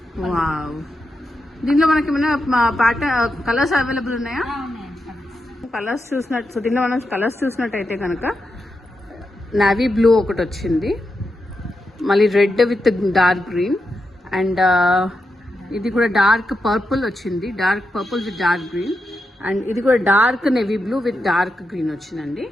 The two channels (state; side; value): normal; both; correlation 0.86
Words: వావ్, దీనిలో మనకి ఏమైనా ప్యాటర్న్ కలర్స్ అవైలబుల్ ఉన్నాయా? కలర్స్ చూసినట్టు, సో దీనిలో మనం కలర్స్ చూసినట్టయితే కనుక నావీ బ్లూ ఒకటి వచ్చింది, మళ్ళీ red with dark green and ఇది కూడా డార్క్ పర్పుల్ వచ్చింది, dark purple with dark green and ఇది కూడా dark navy blue with dark green వచ్చిందండి.